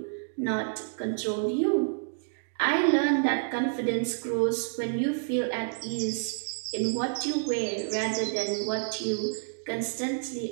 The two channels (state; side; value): silent; left; digital silence